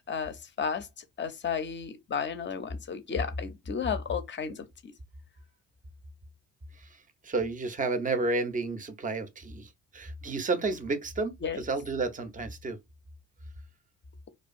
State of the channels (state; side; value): normal; both; correlation 0.17